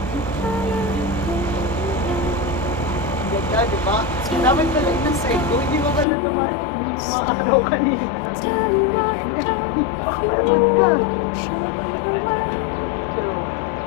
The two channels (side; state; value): right; drops out; at 6.1 s